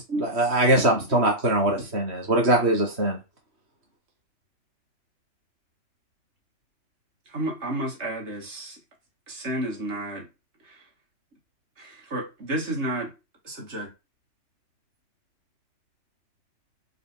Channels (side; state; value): left; late; 3.1 ms